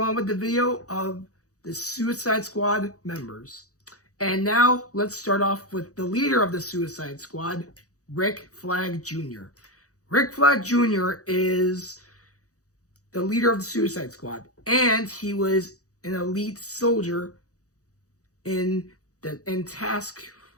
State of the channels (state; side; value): late; right; 0.66 ms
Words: on with the video of the Suicide Squad members. And now, let's start off with the leader of the Suicide Squad, Rick Flag Jr. Rick Flag Jr. is the leader of the Suicide Squad, and he was an elite soldier in Task